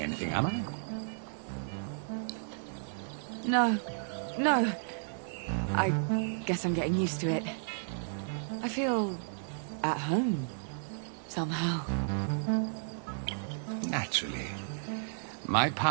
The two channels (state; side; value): silent; left; digital silence